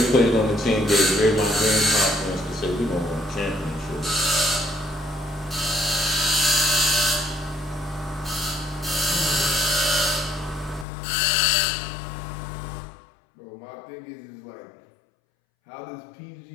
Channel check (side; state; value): right; drops out; at 10.9 s